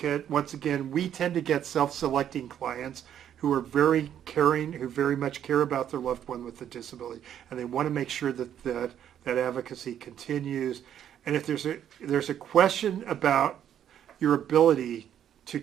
Once again, we tend to get self-selecting clients who are very caring, who very much care about their loved one with a disability, and they want to make sure that that advocacy continues. And if there's a question about your ability to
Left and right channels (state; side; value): quieter; left; 10.0 dB